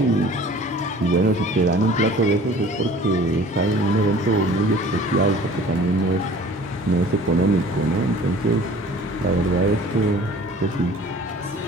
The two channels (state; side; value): normal; both; correlation 0.48